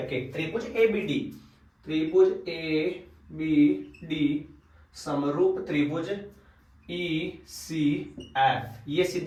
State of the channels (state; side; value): identical; both; correlation 1.00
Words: के। त्रिभुज ABD समरूप त्रिभुज ECF, ये